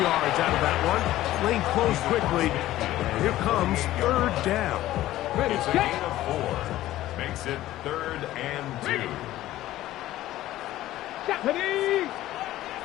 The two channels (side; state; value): right; quieter; 14.9 dB